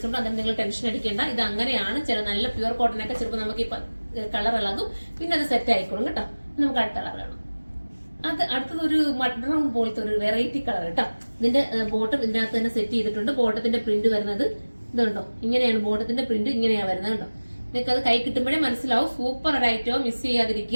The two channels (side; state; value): both; inverted; correlation -1.00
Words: ഉണ്ട്. അതിന് നിങ്ങൾ ടെൻഷൻ അടിക്കേണ്ട. ഇത് അങ്ങനെയാണ്. ചില നല്ല പ്യുവർ കോട്ടനൊക്കെ ചിലപ്പോൾ നമുക്ക് ഈ കളർ ഇളകും, പിന്നെ അത് സെറ്റ് ആയിക്കോളും കേട്ടോ. നമുക്ക് അടുത്ത കളർ കാണാം. അടുത്തത് ഒരു മഡ് ബ്രൗൺ പോലത്തെ ഒരു വെറൈറ്റി കളർ കേട്ടോ. ഇതിന്റെ ബോട്ടം ഇതിനകത്ത് തന്നെ സെറ്റ് ചെയ്തിട്ടുണ്ട്. ബോട്ടത്തിന്റെ പ്രിന്റ് വരുന്നത് ഇതുണ്ടോ, ഇങ്ങനെയാണ് ബോട്ടത്തിന്റെ പ്രിന്റ്, ഇങ്ങനെയാണ് വരുന്നത് കേട്ടോ. നിങ്ങൾക്ക് അത് കൈ കിട്ടുമ്പോഴേ മനസ്സിലാവും. സൂപ്പർ ഒരു ഐറ്റവും മിസ്